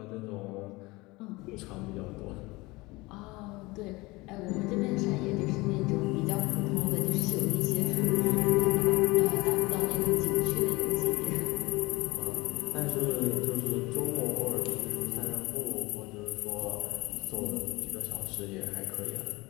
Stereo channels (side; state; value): right; quieter; 22.7 dB